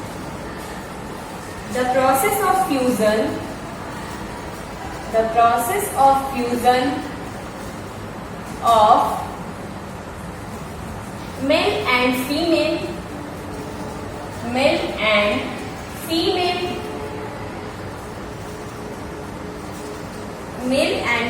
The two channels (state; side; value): identical; both; correlation 1.00